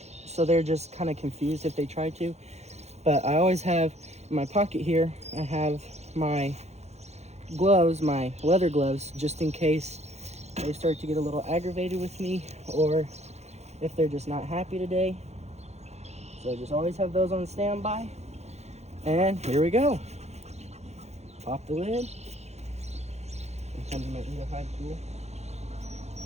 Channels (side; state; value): left; late; 0.32 ms